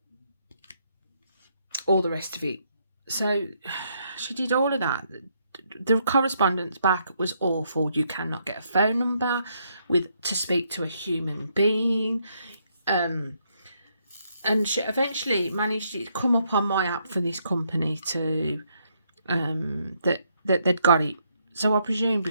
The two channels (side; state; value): both; inverted; correlation -0.74